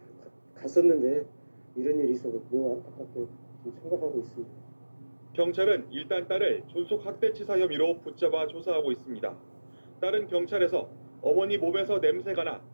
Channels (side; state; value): both; inverted; correlation -1.00